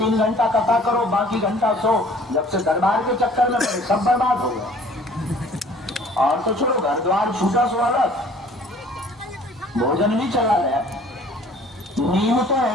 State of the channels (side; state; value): both; normal; correlation 0.53